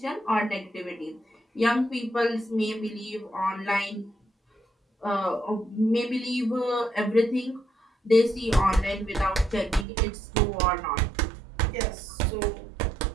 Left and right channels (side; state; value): left; drops out; at 9.9 s